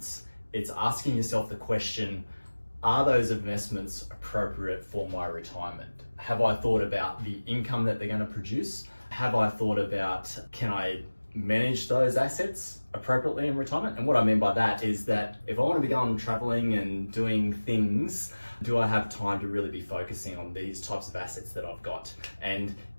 it's asking yourself the question, are those investments appropriate for my retirement? Have I thought about the income that they're going to produce? Have I thought about, can I manage those assets appropriately in retirement? And what I mean by that is that if I want to be going traveling and doing things, do I have time to really be focusing on these types of assets that I've got? And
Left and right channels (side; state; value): both; inverted; correlation -1.00